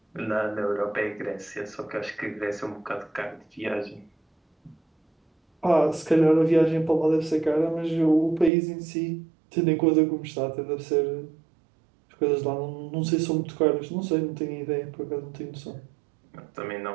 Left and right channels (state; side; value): drops out; left; at 8.5 s